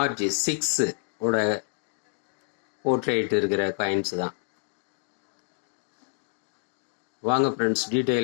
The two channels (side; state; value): right; silent; 59 dB below the other